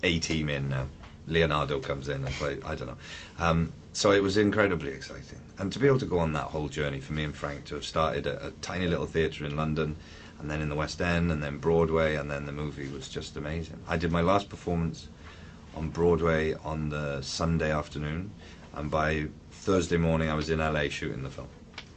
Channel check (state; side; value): identical; both; correlation 1.00